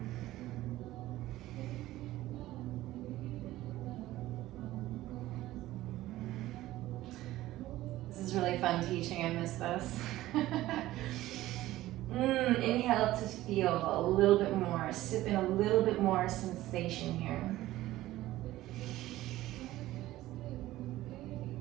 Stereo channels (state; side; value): quieter; left; 15.9 dB